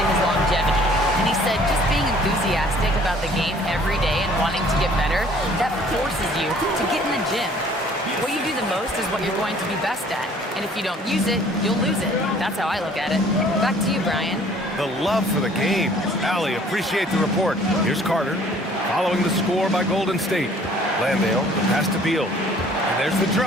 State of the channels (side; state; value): both; normal; correlation 0.55